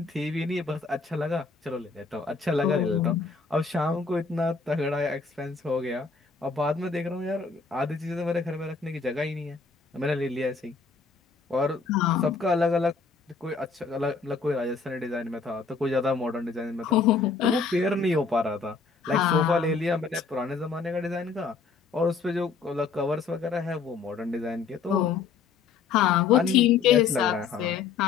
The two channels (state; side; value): quieter; right; 5.0 dB